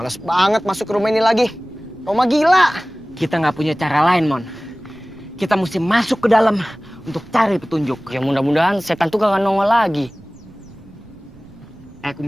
banget masuk ke rumah ini lagi. Rumah gila. Kita nggak punya cara lain, Mon. Kita mesti masuk ke dalam untuk cari petunjuk. Ya mudah-mudahan setan tuh gak nongol lagi.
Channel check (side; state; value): right; noise; rumble, 24 dB below the sound